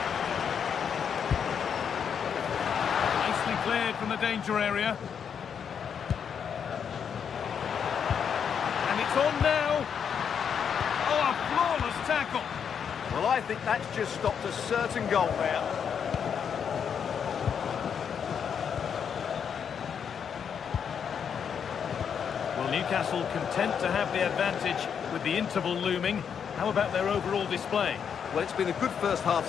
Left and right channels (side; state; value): right; quieter; 7.4 dB